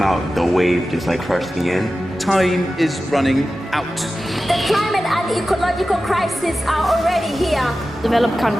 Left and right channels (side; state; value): both; normal; correlation 0.94